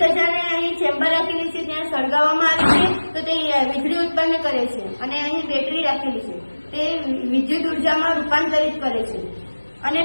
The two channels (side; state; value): both; inverted; correlation -1.00